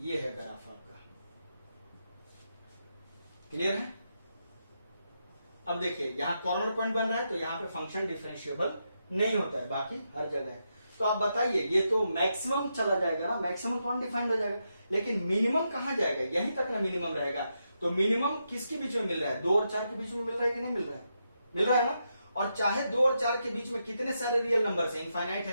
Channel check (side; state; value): both; inverted; correlation -0.84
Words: है ग्राफ आपका। क्लियर है। अब देखिए, यहां कॉर्नर पॉइंट बन रहा है तो यहां पे फंक्शन डिफरेंशिएबल नहीं होता है, बाकी हर जगह है। तो आप बताइए, ये तो मैक्सिमम चला जाएगा ना, मैक्सिमम कौन डिफाइंड हो जाएगा, लेकिन मिनिमम कहां जाएगा, यहीं तक ना मिनिमम रहेगा। तो मिनिमम किसके बीच में मिल रहा है, 2 और 4 के बीच में मिल रहा है कि नहीं मिल रहा है, मिल रहा है ना। और चाहे 2 और 4 के बीच में कितने सारे रियल नंबर है, इनफाइनाइट